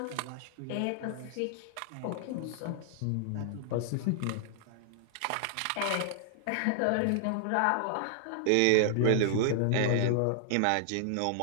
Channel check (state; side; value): different; both; correlation -0.01